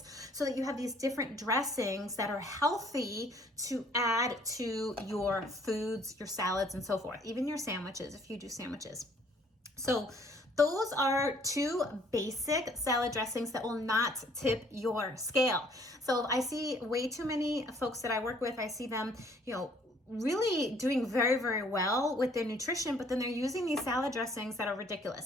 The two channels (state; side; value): normal; both; correlation 0.60